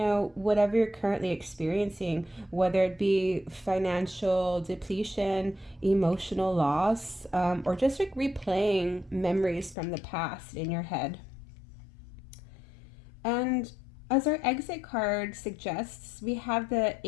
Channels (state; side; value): drops out; right; at 9.8 s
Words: whatever you're currently experiencing, whether it be financial depletion, emotional loss, or just like replaying memories from the past in your head. And as our exit card suggests, we have the